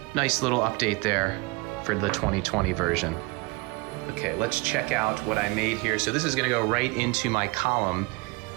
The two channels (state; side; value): quieter; left; 25.8 dB